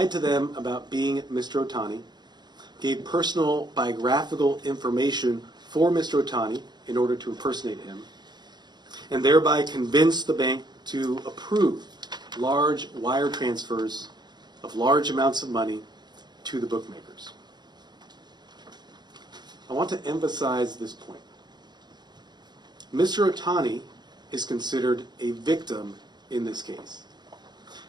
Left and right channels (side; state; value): left; late; 0.21 ms